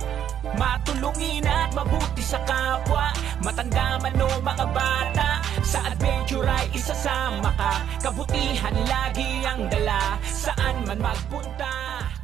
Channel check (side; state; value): left; quieter; 9.7 dB